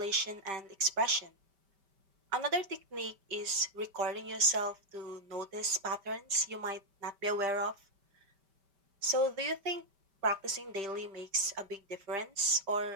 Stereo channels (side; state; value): left; late; 5.1 ms